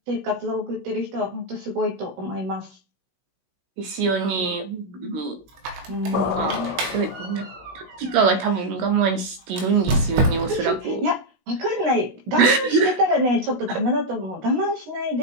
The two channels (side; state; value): left; late; 16 ms